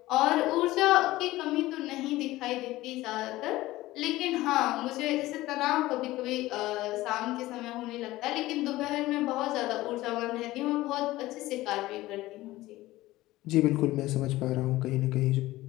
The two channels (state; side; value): quieter; right; 17.4 dB